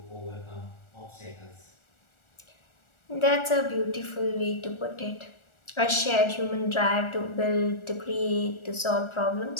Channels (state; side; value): late; right; 1.4 ms